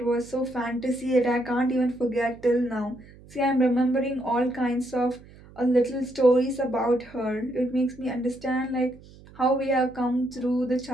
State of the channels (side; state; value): right; noise; hum, 22 dB below the sound